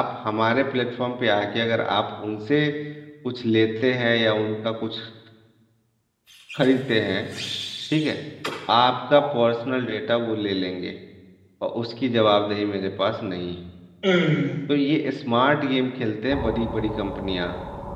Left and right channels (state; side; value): identical; both; correlation 1.00